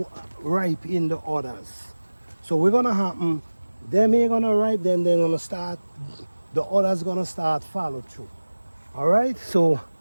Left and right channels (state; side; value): inverted; both; correlation -1.00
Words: ripe in the others. So we're gonna happen, them ain't gonna ripe, then they're gonna start, the others gonna start follow through. All right, so